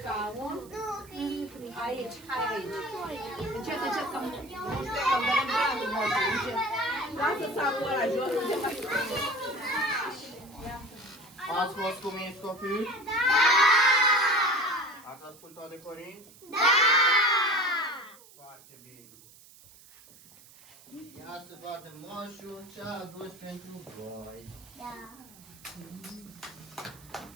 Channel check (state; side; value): noise; right; hiss, 23 dB below the sound